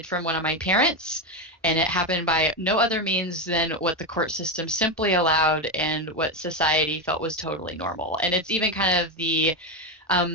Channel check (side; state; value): both; normal; correlation 0.11